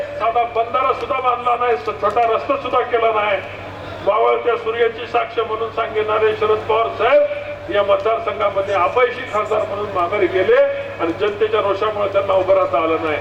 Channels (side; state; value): both; identical; correlation 1.00